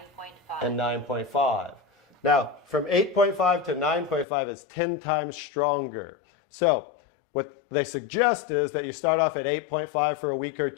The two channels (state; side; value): drops out; right; at 4.2 s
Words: 9.5. And 9.5. Now, from 8.5 to 9.5 is 10 times stronger. So what they suggest is that you start off at 8.5 for a week or